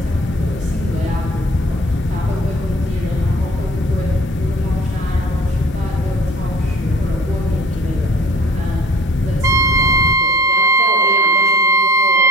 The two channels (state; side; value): normal; both; correlation 0.47